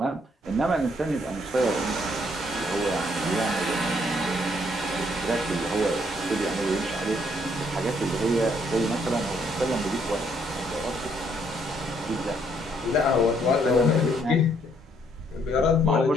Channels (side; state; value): both; normal; correlation 0.69